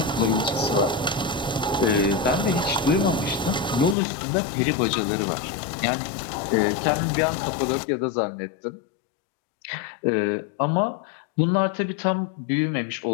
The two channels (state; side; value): drops out; right; at 4.0 s